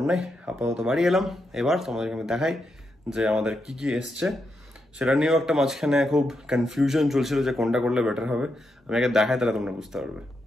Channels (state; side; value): normal; both; correlation 0.84